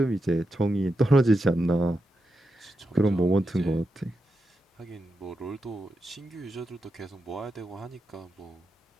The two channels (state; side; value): normal; both; correlation 0.87